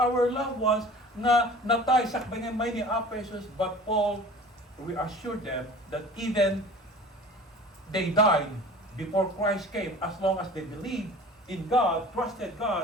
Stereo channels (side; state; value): both; normal; correlation 0.43